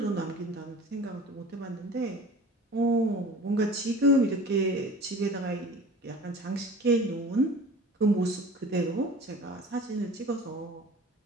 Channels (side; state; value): both; normal; correlation 0.41